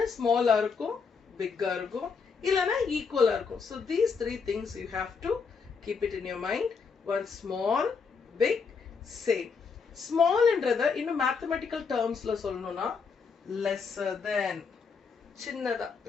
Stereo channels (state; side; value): quieter; right; 5.4 dB